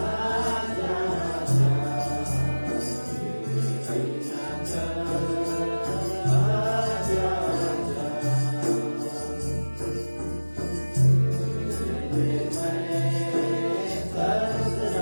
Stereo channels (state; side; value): inverted; both; correlation -1.00